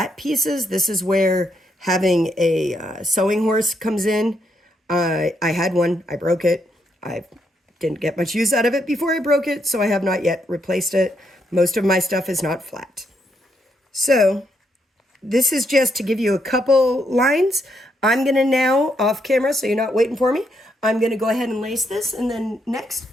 pieces, this is where having a sewing horse comes in. I had one, I broke it. I didn't get much use out of it before I broke it, so I have not yet replaced it. Most of my stuff is not flat. So this is just to give you a couple lines. I'm going to now, off camera, so you're not waiting for me, I'm going to go ahead and lace this, and then next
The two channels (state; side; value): normal; both; correlation 0.76